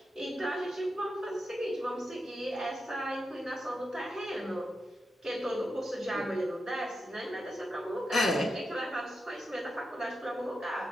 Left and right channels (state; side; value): normal; both; correlation 0.88